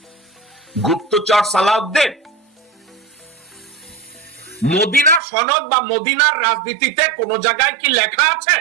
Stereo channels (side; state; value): left; drops out; at 5.2 s